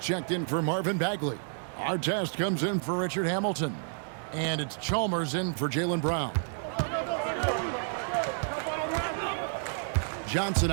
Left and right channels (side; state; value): left; silent; digital silence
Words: in for Marvin Bagley. Artest comes in for Richard Hamilton. And it's Chalmers in for Jaylen Brown. Johnson